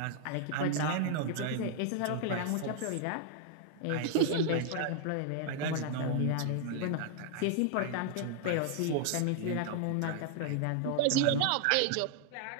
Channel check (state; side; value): different; both; correlation 0.00